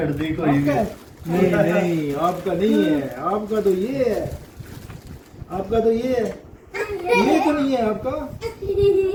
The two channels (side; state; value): both; identical; correlation 1.00